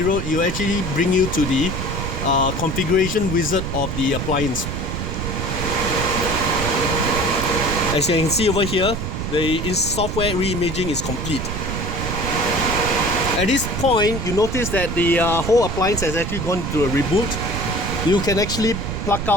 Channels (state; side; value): noise; right; rumble, 3 dB below the sound